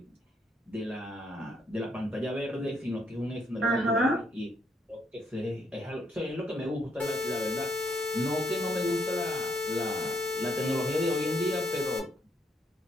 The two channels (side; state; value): both; normal; correlation 0.73